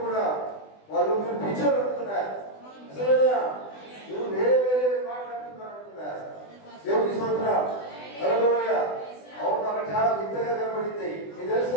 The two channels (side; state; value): right; late; 20 ms